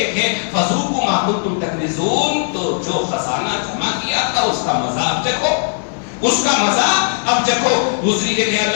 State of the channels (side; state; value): right; silent; 68 dB below the other